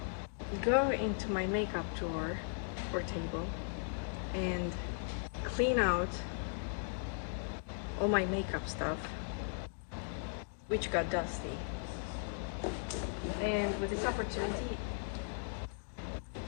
go into my makeup drawer or table and clean out all my makeup stuff which got dusty. And with this opportunity,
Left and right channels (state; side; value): silent; right; digital silence